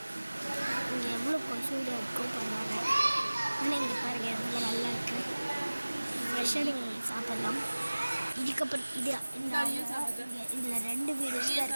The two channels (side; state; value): both; inverted; correlation -1.00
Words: இங்கே எவ்வளோ கொசூடு இருக்கும் பண்ணுவாங்க. ஆனால் இங்கே பாருங்கள் எவ்வளோ நல்லா இருக்குது. ஃப்ரெஷ்ஷாக நீங்கள் சாப்பிட்லாம். இதுக்கப்புறம் இது இந்த இதில் 2 வீடியோஸ் தான்